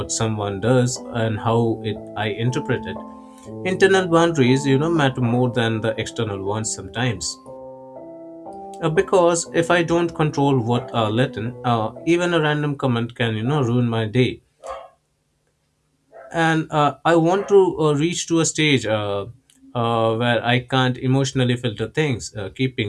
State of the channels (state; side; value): identical; both; correlation 1.00